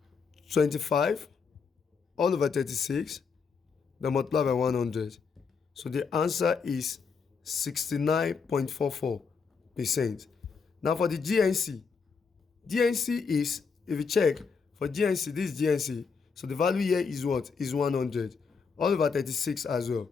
25 all over 36, then multiply by 100. So the answer is 69.44%. Now for the GNC is, if you check, for GNC, this is GNC. So the value here is what? Is 100. All over 36 as well.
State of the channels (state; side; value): quieter; right; 5.5 dB